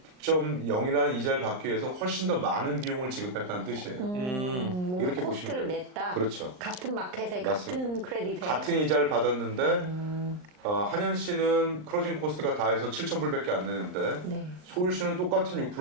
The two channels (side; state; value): left; late; 39 ms